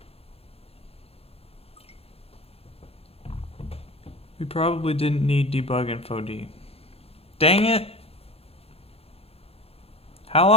We probably didn't need debug info D. Dang it! How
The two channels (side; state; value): right; late; 0.29 ms